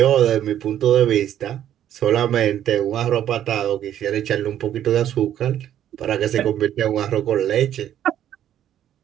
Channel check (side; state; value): left; quieter; 10.9 dB